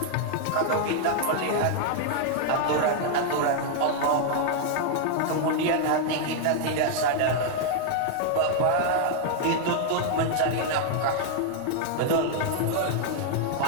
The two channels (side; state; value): both; different; correlation 0.00